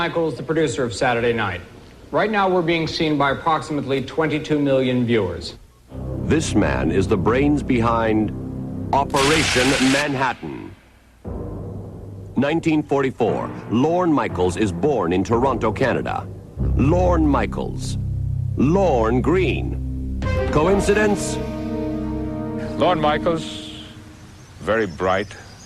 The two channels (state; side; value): identical; both; correlation 1.00